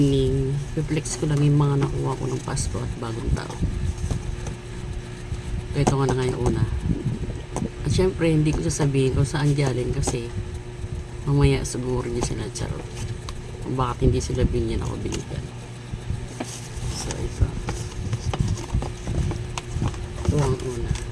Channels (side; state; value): both; identical; correlation 1.00